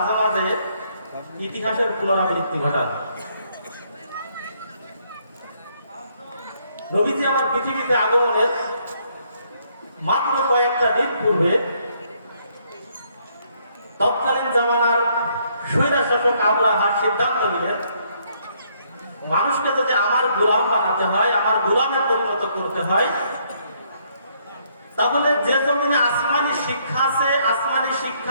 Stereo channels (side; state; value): both; inverted; correlation -0.70